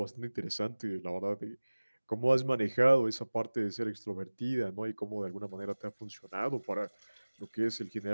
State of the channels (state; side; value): inverted; both; correlation -1.00